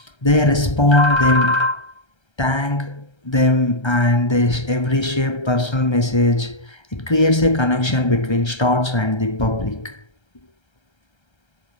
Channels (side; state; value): right; late; 1.3 ms